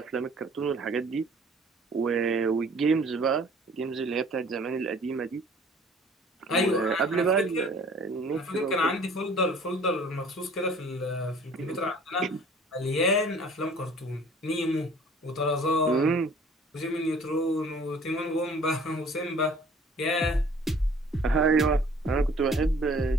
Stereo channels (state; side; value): normal; both; correlation 0.52